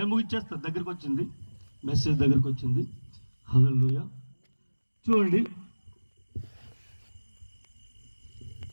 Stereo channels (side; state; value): both; inverted; correlation -1.00